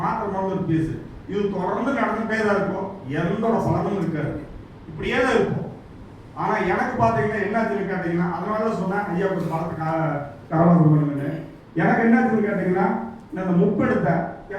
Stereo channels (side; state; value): both; identical; correlation 1.00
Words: ஒரு பீஸ். இது தொடர்ந்து நடந்துட்டே தான் இருக்கும், எந்த பலனும் இருக்காது, இப்படியே தான் இருக்கும். ஆனால் எனக்கு பார்த்தீங்கன்னா என்னாச்சுன்னு கேட்டீங்கன்னா, அதனால தான் சொன்னேன் ஐயா ஒரு பலத்தை கரவாசம் பண்ணுங்கன்னு. எனக்கு என்னாச்சுன்னு கேட்டீங்கன்னா, இந்த முப்பெடுத்த